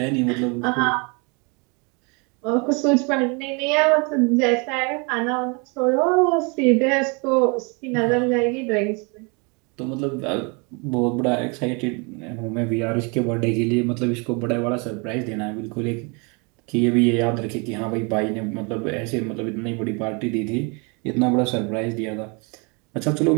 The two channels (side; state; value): left; quieter; 31.9 dB